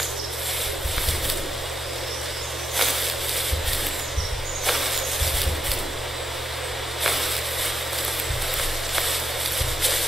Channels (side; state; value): right; noise; hum, 24 dB below the sound